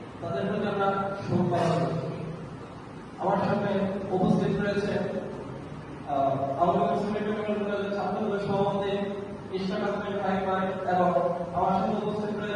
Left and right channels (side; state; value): both; identical; correlation 1.00